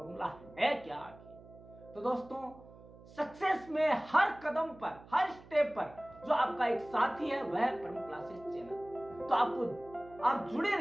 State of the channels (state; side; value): noise; right; hum, 21 dB below the sound